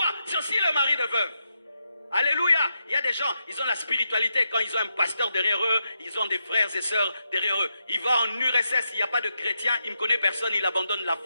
C'est aussi le mari de veuve. Alléluia. Il y a des gens, ils ont la spiritualité. Quand ils ont un pasteur derrière eux, ils ont des frères et sœurs derrière eux. Il va en URSS, il n'y a pas de chrétien, il ne connaît personne, il abandonne la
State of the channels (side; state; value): both; inverted; correlation -0.84